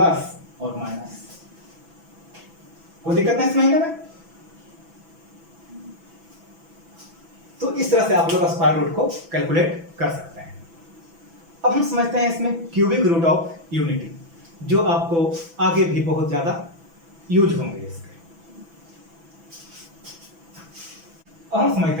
और माइनस, कोई दिक्कत नहीं इस महीने में। तो इस तरह से आप लोग स्क्वायर रूट को कैलकुलेट कर सकते हैं। अब हम समझते हैं इसमें क्यूबिक रूट ऑफ यूनिटी, जो आपको आगे भी बहुत ज्यादा यूज होंगे इसके। अब हम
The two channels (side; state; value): left; late; 6.0 ms